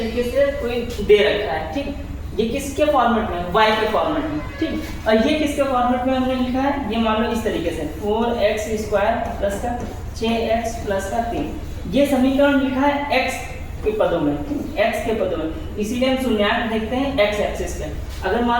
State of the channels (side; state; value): both; identical; correlation 1.00